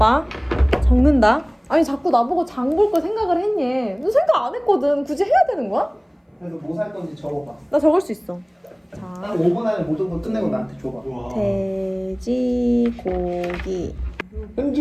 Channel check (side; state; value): both; identical; correlation 1.00